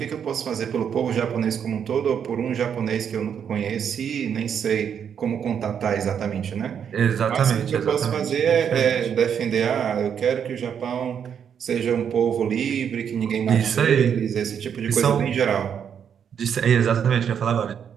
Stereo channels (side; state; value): left; quieter; 8.0 dB